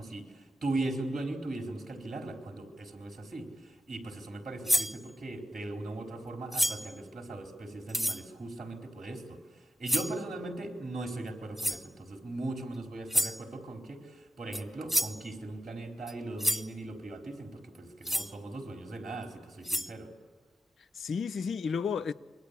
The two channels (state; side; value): normal; both; correlation 0.85